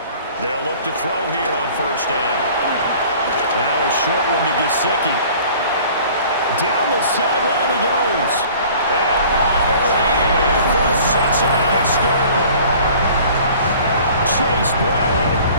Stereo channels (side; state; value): both; inverted; correlation -0.49